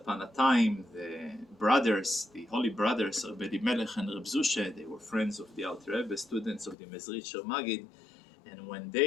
a time the brothers, the holy brothers, Rabbi Melech and Reb Zushe, they were friends of the Alter Rebbe, students of the Mezritcher Maggid, and when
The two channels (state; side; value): drops out; right; at 6.8 s